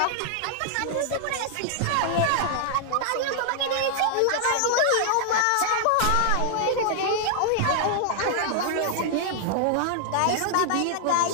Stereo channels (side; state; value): both; different; correlation 0.00